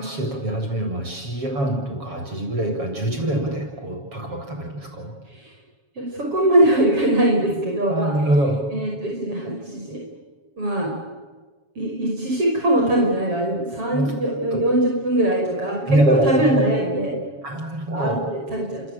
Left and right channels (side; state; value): left; late; 7.2 ms